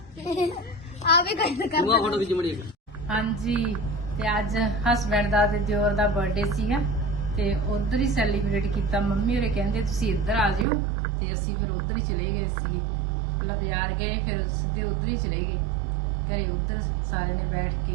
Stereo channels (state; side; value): drops out; left; at 10.7 s